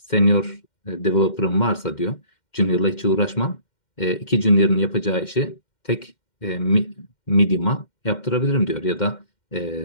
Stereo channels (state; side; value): late; right; 2.1 ms